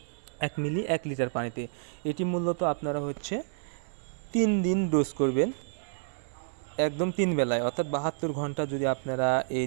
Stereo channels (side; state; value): left; silent; 58 dB below the other